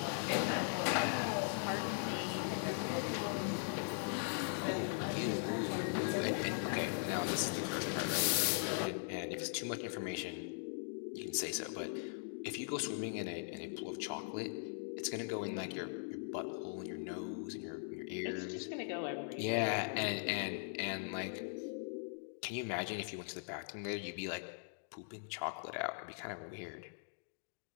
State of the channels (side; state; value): right; silent; digital silence